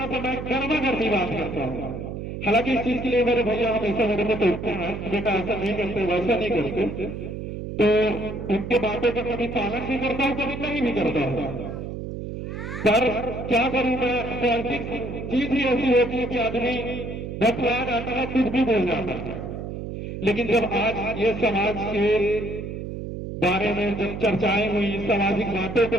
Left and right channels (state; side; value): noise; right; hum, 7 dB below the sound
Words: सा मैं गर्मा गर्मी बात करता हूँ। हालांकि इस चीज के लिए मेरे भैया हमेशा मेरे को टोकते हैं, बेटा ऐसा नहीं करते, वैसा नहीं करते, तो उनके बातों का कभी पालन भी करता हूँ, कभी नहीं भी करता हूँ। पर क्या करूँ मैं, पॉलिटिक्स चीज ही ऐसी होती है कि आदमी बतला जाता है, कुछ भी बोल जाता है। लेकिन जब आज ये समाज के बारे में जब चर्चाएं हुई, सामाजिक बातों को